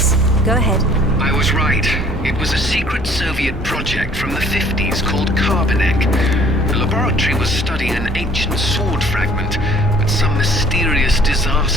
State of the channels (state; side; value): normal; both; correlation 0.56